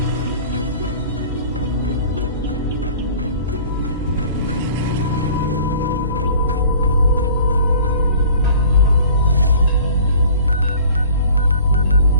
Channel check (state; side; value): inverted; both; correlation -0.47